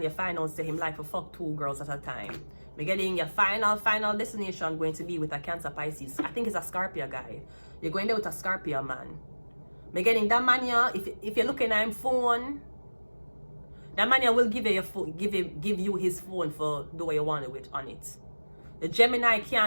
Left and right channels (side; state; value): both; inverted; correlation -1.00